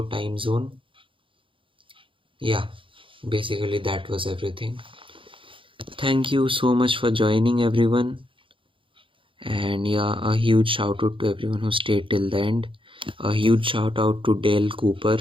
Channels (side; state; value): left; late; 0.25 ms